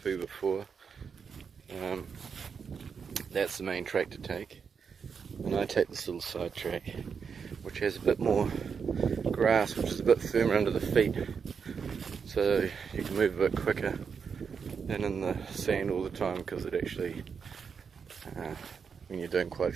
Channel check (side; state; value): left; quieter; 6.2 dB